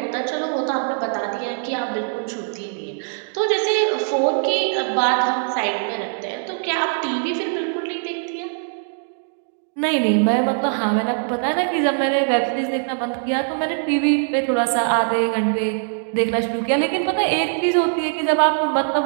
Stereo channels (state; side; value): silent; left; digital silence